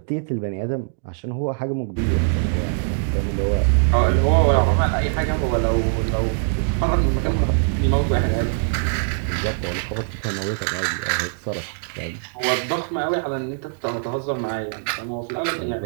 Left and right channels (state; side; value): silent; left; digital silence